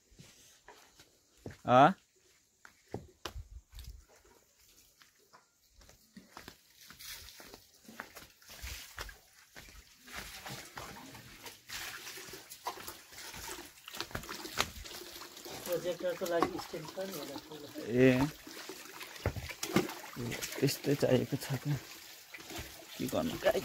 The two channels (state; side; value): identical; both; correlation 1.00